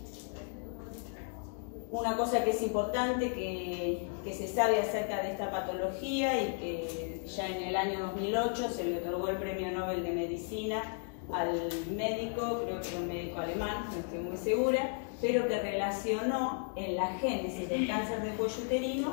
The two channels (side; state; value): right; silent; 55 dB below the other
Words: Una cosa que es importante que se sabe acerca de esta patología y que ya en el año 2008 se le otorgó el Premio Nobel de Medicina al médico, creo que era un médico alemán, no estoy muy segura, pero que relacionó en la génesis del cáncer de cuello